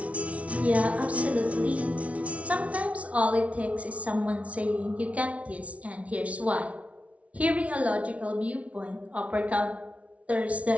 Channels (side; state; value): left; late; 0.065 ms